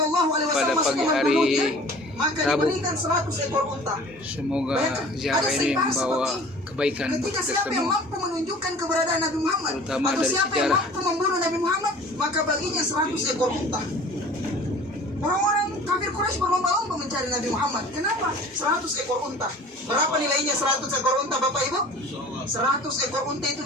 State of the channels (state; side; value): normal; both; correlation 0.45